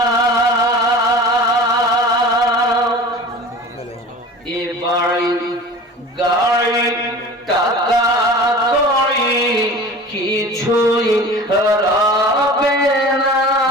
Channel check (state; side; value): normal; both; correlation 0.38